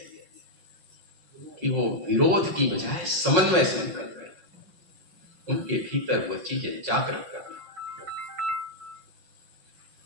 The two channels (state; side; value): late; left; 5.5 ms